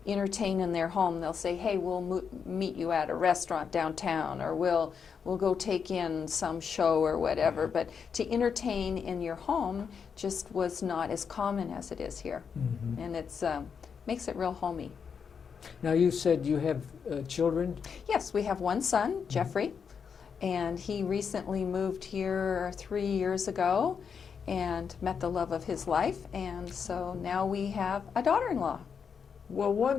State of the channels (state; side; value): quieter; right; 6.5 dB